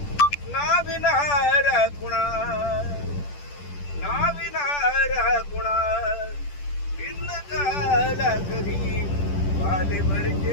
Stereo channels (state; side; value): late; right; 10 ms